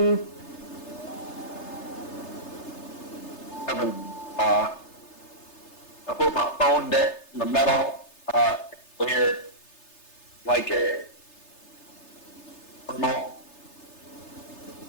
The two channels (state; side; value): late; right; 3.3 ms